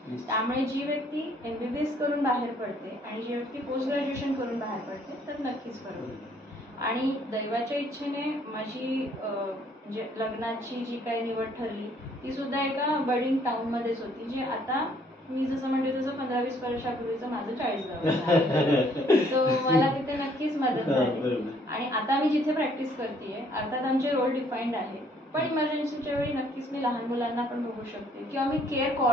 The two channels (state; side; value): normal; both; correlation 0.63